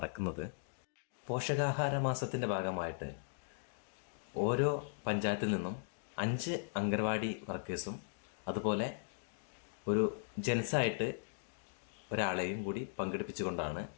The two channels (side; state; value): right; silent; digital silence